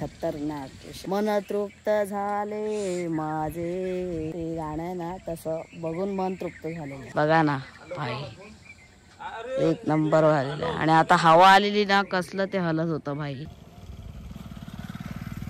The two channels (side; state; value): both; identical; correlation 1.00